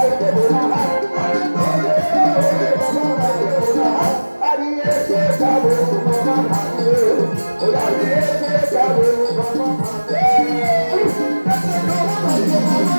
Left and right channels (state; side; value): inverted; both; correlation -1.00